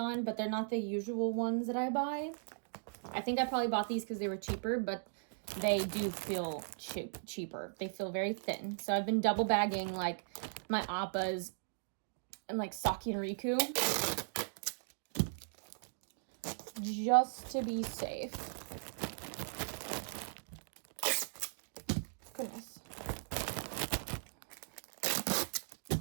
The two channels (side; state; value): left; silent; digital silence